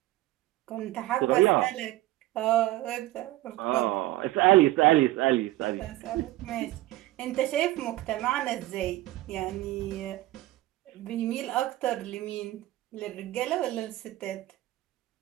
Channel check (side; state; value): left; quieter; 17.0 dB